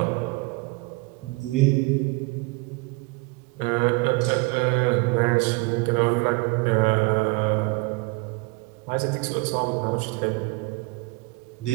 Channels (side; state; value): left; quieter; 25.7 dB